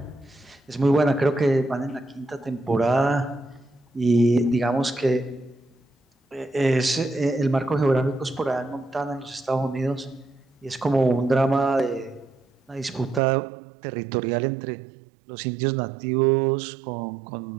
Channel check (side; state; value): left; drops out; at 13.2 s